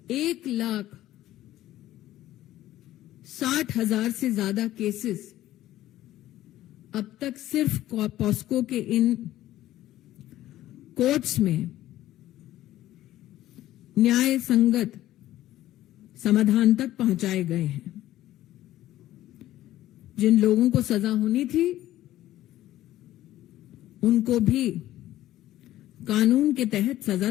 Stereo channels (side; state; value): right; quieter; 14.3 dB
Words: 1,60,000 से ज्यादा केसेस अब तक सिर्फ पॉस्को के इन कोर्ट्स में न्याय संगत समाधान तक पहुंचाए गए हैं। जिन लोगों को सजा होनी थी उनको भी कानून के तहत सजा